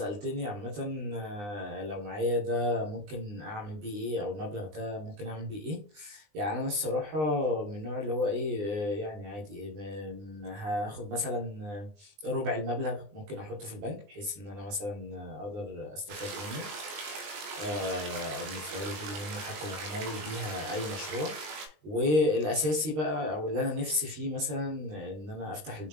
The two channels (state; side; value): late; left; 20 ms